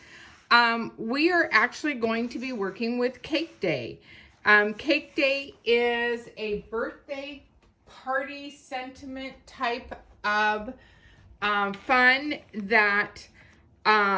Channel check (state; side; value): identical; both; correlation 1.00